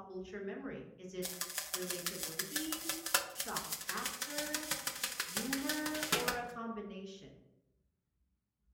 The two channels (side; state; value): both; identical; correlation 1.00